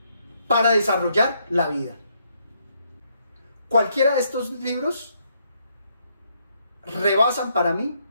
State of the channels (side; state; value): both; inverted; correlation -0.74